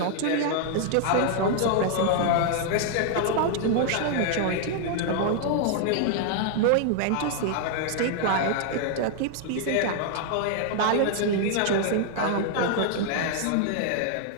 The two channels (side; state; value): both; different; correlation 0.00